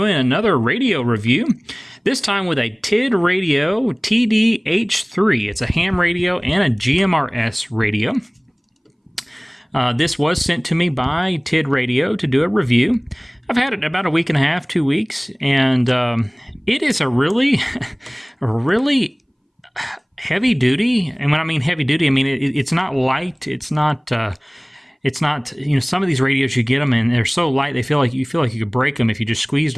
another radio review, this time with a TIDRADIO TD-H3. It's a ham radio and a GMRS radio. This was sent to me by TIDRADIO to do a review. I've had it about a week and a half, 2 weeks, and it is a really heavy duty. And when I mean heavy duty, I mean it's not light. It's not, you know, some of these radios you get them and they're so light you feel like you could break them if you just squeezed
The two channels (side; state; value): both; identical; correlation 1.00